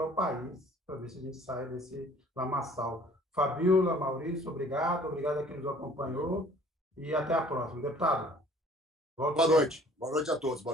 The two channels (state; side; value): normal; both; correlation 0.53